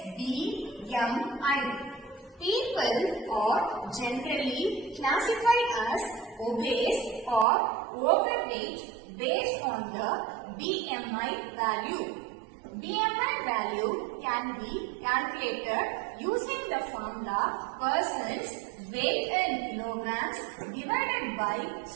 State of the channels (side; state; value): left; drops out; at 7.5 s